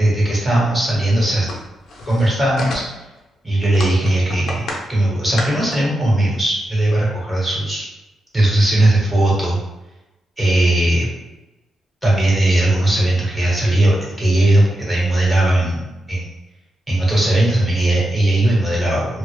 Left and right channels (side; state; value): both; normal; correlation 0.89